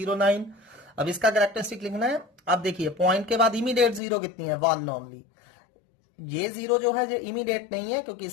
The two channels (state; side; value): drops out; right; at 4.0 s